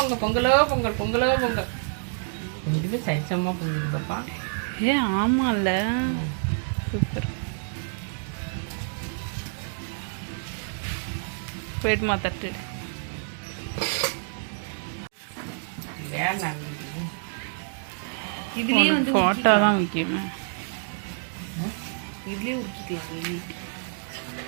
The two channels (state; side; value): silent; left; digital silence